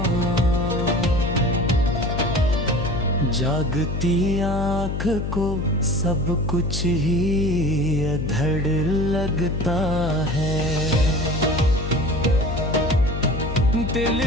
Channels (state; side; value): noise; left; hum, 3 dB below the sound